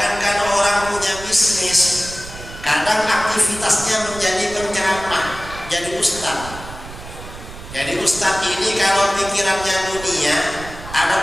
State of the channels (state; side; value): noise; right; rumble, 14 dB below the sound